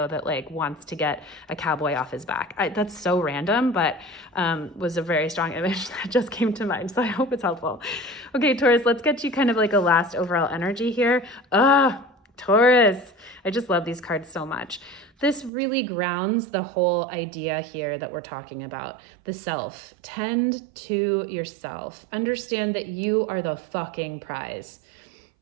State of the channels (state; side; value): drops out; left; at 15.5 s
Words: that like wants to get a cowboy off his back. That's so random, but was a very strong image that just came to mind. So I hope it's helpful. Okay, Taurus, let's get you kind of like a last overall energy here. Taurus, I just love these cards so much. This really grounds the whole idea here that we're talking about, the self. Tend to yourself. Understand that you are the fucking prize.